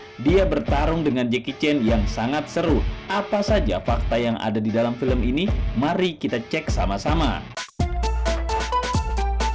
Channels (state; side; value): identical; both; correlation 1.00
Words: dia bertarung dengan Jackie Chan yang sangat seru. Apa saja fakta yang ada di dalam film ini? Mari kita cek sama-sama.